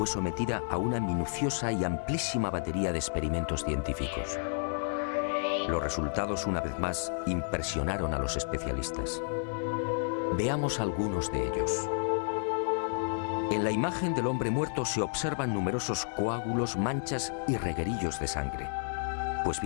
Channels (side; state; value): right; silent; digital silence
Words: sometida a una minuciosa y amplísima batería de experimentos científicos. Los resultados, una vez más, impresionaron a los especialistas. Veamos algunos de ellos. En la imagen del hombre muerto se observan numerosos coágulos, manchas y reguerillos de sangre. Pues